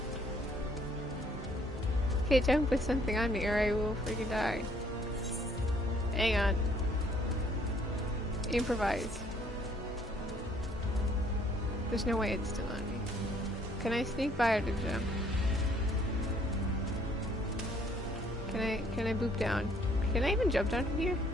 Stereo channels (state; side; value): normal; both; correlation 0.63